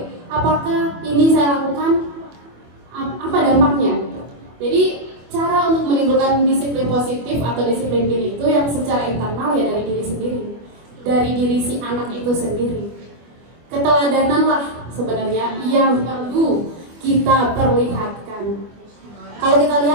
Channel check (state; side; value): late; left; 25 ms